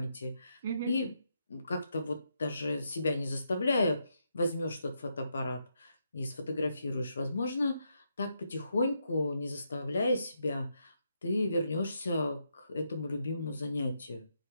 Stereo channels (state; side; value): inverted; both; correlation -0.81